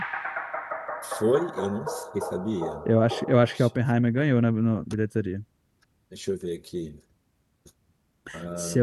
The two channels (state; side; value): identical; both; correlation 1.00